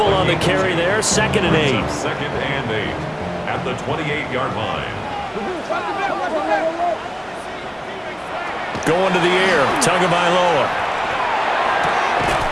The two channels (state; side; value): identical; both; correlation 1.00